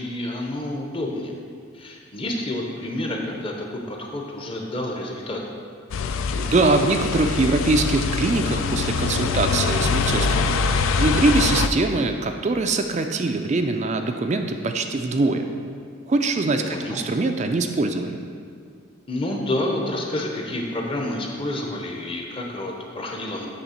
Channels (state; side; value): normal; both; correlation 0.48